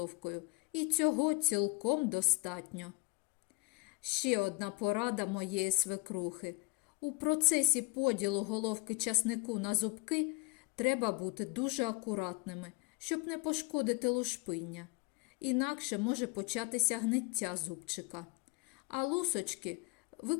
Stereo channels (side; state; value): right; quieter; 25.6 dB